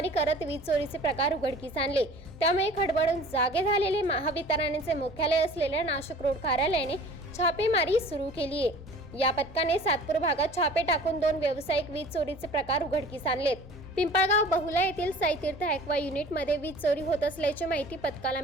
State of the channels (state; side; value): normal; both; correlation 0.45